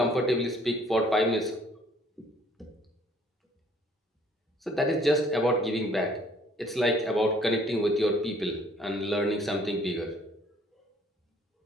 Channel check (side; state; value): both; normal; correlation 0.59